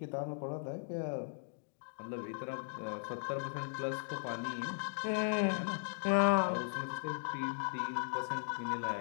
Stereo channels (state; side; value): silent; right; digital silence